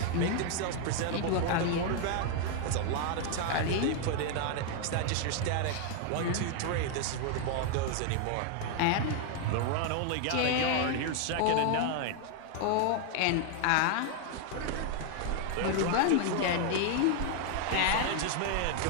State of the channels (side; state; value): both; different; correlation 0.00